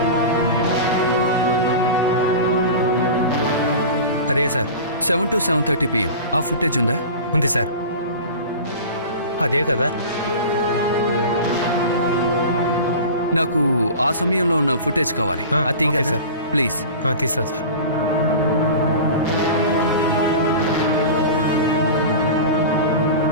అదే సార్. 7 to 7:30 PM ఆ ఫుటేజ్ ఉందా? ఉంది సార్. అదే కదా. నాకు ఆ సమయంలో ఉన్న ఫుటేజ్ కావాలి. అది ఓకే కదా సార్. ప్లీజ్. తీస్తా సార్.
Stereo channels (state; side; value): inverted; both; correlation -0.33